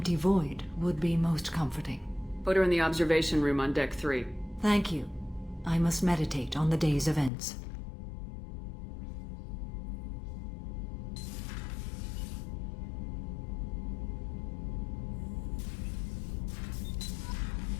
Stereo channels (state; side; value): drops out; right; at 7.3 s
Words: void would be most comforting. Put her in the observation room on Deck 3. Thank you. I must meditate on the day's events.